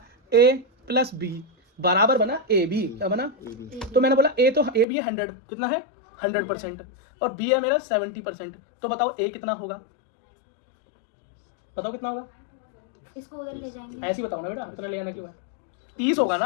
A प्लस B बराबर बना AB, क्या बना? तो मैंने बोला A तो AB है 100, कितना है 100%, और B है मेरा 70%। तो बताओ A कितना होगा, बताओ कितना होगा? इसको उधर ले जाएंगे, ऐसे ही बताओ ना बेटा, इतना ले आना क्यों है? 30 होगा ना।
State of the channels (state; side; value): drops out; right; at 4.9 s